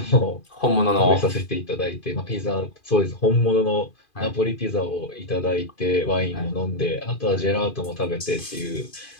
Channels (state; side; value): late; right; 2.5 ms